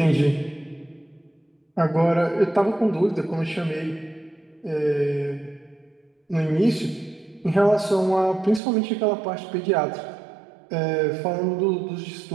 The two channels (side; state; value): left; drops out; at 8.6 s